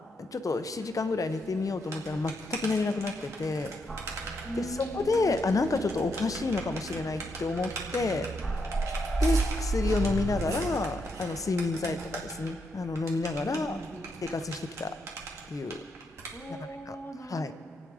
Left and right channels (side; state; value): both; normal; correlation 0.80